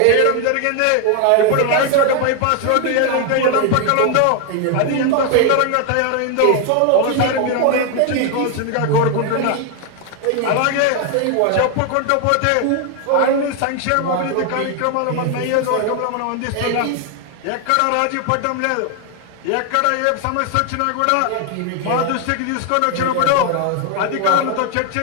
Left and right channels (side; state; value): both; different; correlation 0.01